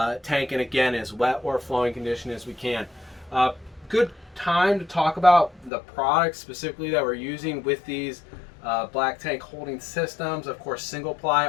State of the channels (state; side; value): drops out; right; at 5.7 s